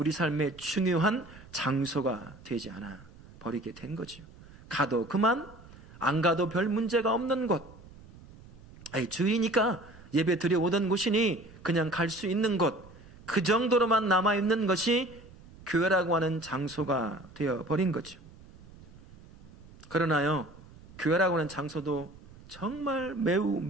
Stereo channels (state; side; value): noise; right; rumble, 21 dB below the sound